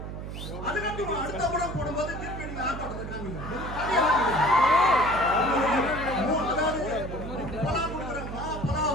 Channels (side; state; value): right; noise; hum, 8 dB below the sound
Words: அதுக்கப்புறம் அடுத்த படம் போடும்போது திருப்பி நீங்க ஆட்டத்தை காமிங்க.